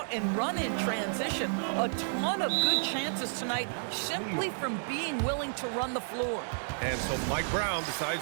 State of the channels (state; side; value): silent; left; digital silence